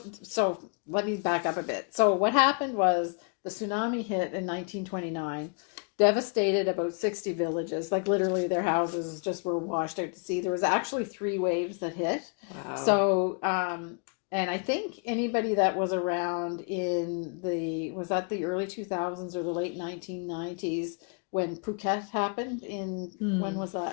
let me back up a bit. So what happened was the tsunami hit in 1929, devastated about 60 villages. Like literally their houses just were washed out to sea. There was actually 3 waves that hit. Wow. So, and I think anybody that was around was that the early 2000s or the late 1990s when Phuket happened when was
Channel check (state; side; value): quieter; right; 38.5 dB